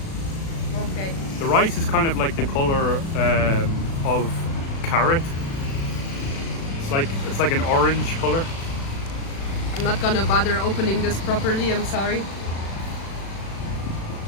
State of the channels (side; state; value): right; late; 36 ms